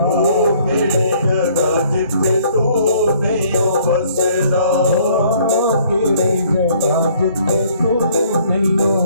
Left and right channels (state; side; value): inverted; both; correlation -0.61